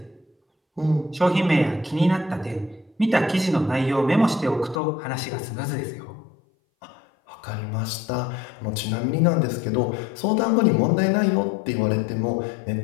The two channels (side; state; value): right; drops out; at 4.8 s